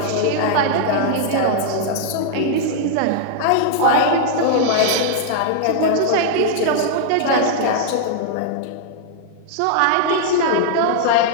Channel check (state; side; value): different; both; correlation -0.01